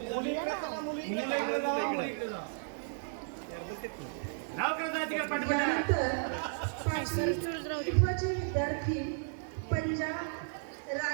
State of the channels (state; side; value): silent; left; 55 dB below the other